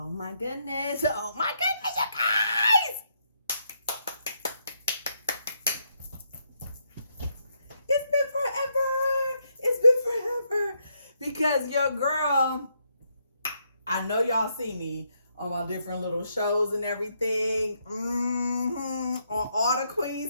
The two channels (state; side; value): inverted; both; correlation -0.76